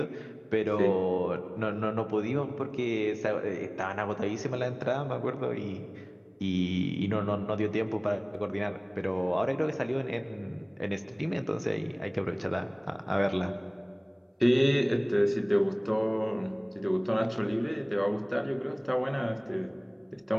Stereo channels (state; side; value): identical; both; correlation 1.00